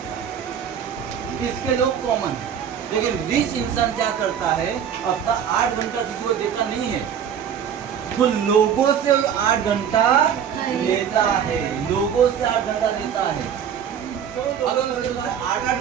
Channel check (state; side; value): quieter; left; 8.4 dB